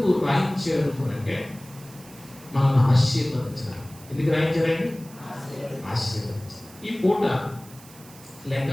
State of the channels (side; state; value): right; noise; hiss, 21 dB below the sound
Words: రాయించారు అంటే మనల్ని ఆశీర్వదించడానికి. ఎందుకు రాయించారండి? ఆశీర్వదించారు. ఈ పూట లేక